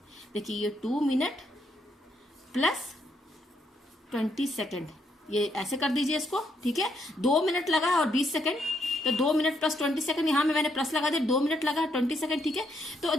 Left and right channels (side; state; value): both; normal; correlation 0.75